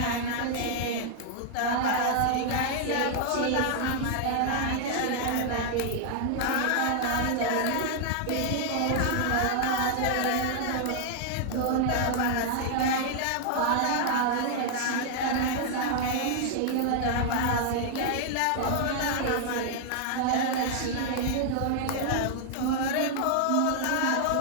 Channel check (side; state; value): both; different; correlation 0.00